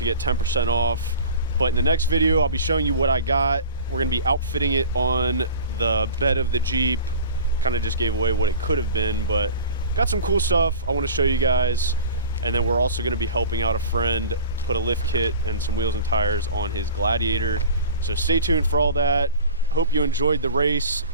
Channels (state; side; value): inverted; both; correlation -0.39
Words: get 10% off. But in the next video, I'll be showing you what I got. We're gonna be outfitting it on the bed of the Jeep. Kind of just gave away what it could have been, but got some cool stuff I want to show you guys. And then we're also going to be helping out a friend put a lift kit and some wheels and tires on his Gladiator. So stay tuned for all that. Hope you enjoyed the race.